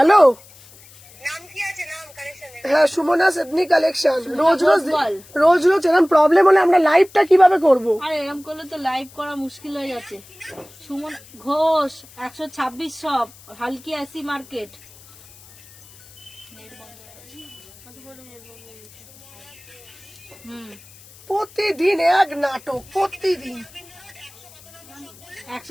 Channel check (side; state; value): left; noise; hiss, 23 dB below the sound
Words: নাম কি আছে? নাম কালেকশনের হ্যাঁ সুমনা সেদনি কালেকশন। রোজ রোজ এরকম প্রবলেম হলে আমরা লাইভটা কিভাবে করব? আর এরকম করলে তো লাইভ করা মুশকিল হয়ে যাচ্ছে। সুমন ঘোষ 126 সব হালকি আসি মার্কেট। প্রতিদিন এক নাটক, প্রতিদিন।